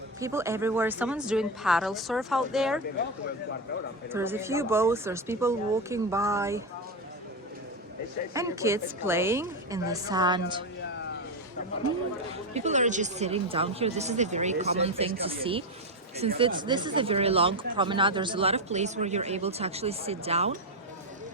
People everywhere. Someone's doing paddle surf out there. There's a few boats, there's people walking by, and kids playing in the sand. People are just sitting down here. This is a very common thing to see. Since this is a very long promenade, there's a lot of place where you're able to actually sit down.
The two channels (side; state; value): both; normal; correlation 0.11